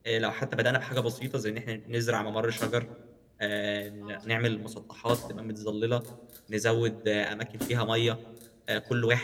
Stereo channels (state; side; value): identical; both; correlation 1.00